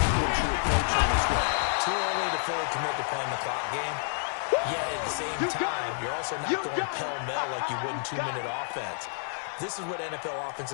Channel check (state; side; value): silent; right; 57 dB below the other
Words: your approach on this one? Too early to fully commit to playing the clock game. Yet at the same time, you're also not going pell-mell like you would in 2-minute offense. This is what NFL